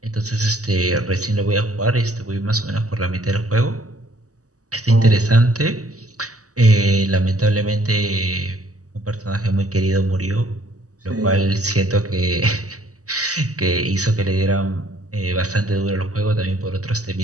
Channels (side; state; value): left; late; 0.66 ms